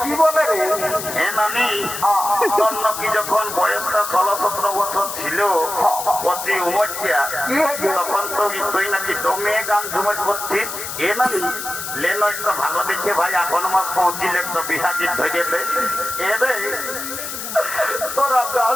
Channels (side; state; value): left; noise; hiss, 7 dB below the sound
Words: কি বলে রে? এ নানি তোর নাকি যখন বয়সটা 16-17 বছর ছিল কচি উমরটা কি হয়েছে? তখন তুই নাকি দমে গান ঝুমট করছিস। এ নানি লেনো একটু ভালো দেখে ভাই এখন মাস পৌঁছিলে একটু বিহা গীত ধরে দে। এ রে তোরা গান